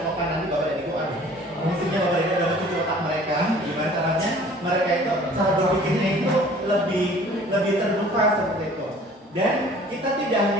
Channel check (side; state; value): both; normal; correlation 0.50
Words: nanti Bapak dan Ibu, maksudnya Bapak dan Ibu udah mencuci otak mereka, gimana caranya mereka itu cara berpikirnya itu lebih terbuka seperti itu. Dan kita tidak